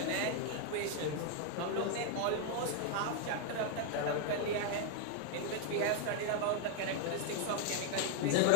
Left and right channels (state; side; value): different; both; correlation 0.00